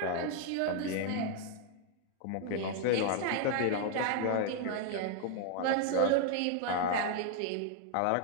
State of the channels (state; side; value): different; both; correlation 0.00